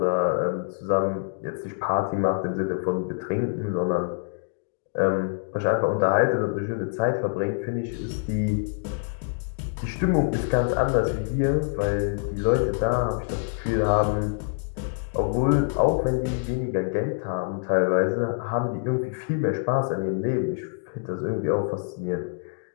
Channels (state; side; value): silent; right; digital silence